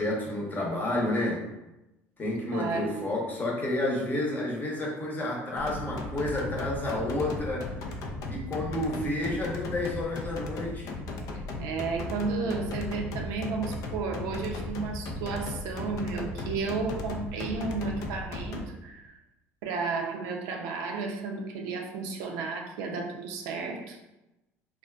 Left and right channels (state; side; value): normal; both; correlation 0.47